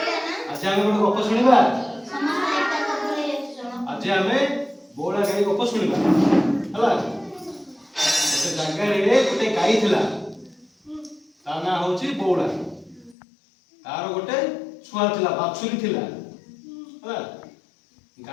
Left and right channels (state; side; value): drops out; right; at 13.2 s